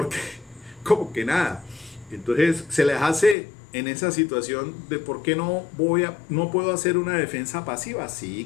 como que nada. Entonces se les hace en esa situación de por qué no puedo hacer una defensa pasiva. Sí,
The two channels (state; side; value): drops out; right; at 3.4 s